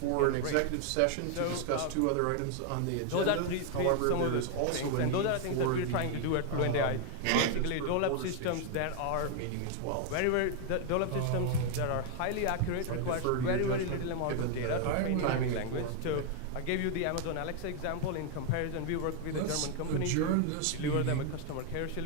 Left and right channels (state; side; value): different; both; correlation 0.00